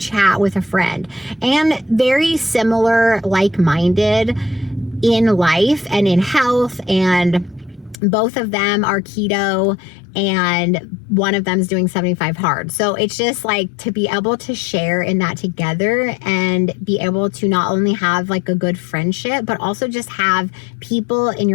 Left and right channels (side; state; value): right; drops out; at 8.0 s